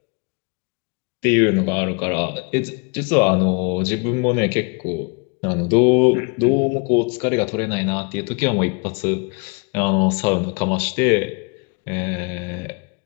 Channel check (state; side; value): quieter; right; 33.4 dB